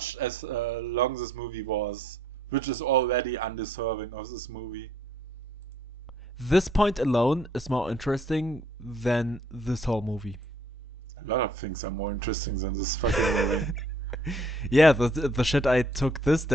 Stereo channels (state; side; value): normal; both; correlation 0.64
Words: as long this movie was, which is already undeserving of this movie. This point alone is more interesting than this whole movie. A lot of things are more interesting than this fucking movie. Yeah, the shit I took this